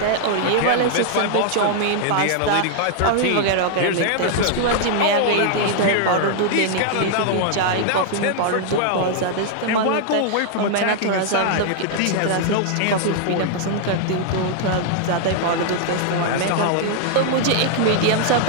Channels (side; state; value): both; different; correlation -0.01